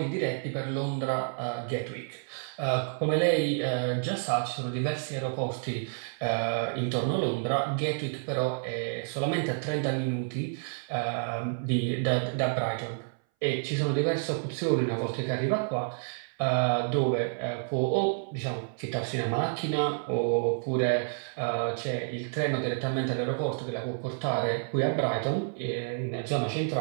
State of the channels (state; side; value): silent; left; 58 dB below the other